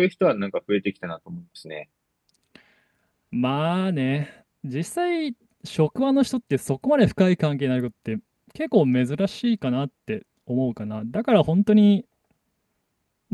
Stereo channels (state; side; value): identical; both; correlation 1.00